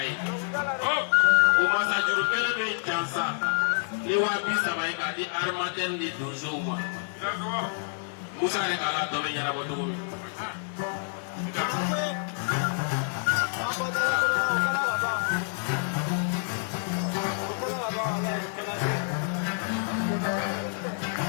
Oh, au Masajuru Kelebe Jansa. Les Wabi Samaï Kadi Armatem de Dozouma. Moussa Rekala Domi Yarabotoumi.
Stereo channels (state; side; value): silent; right; digital silence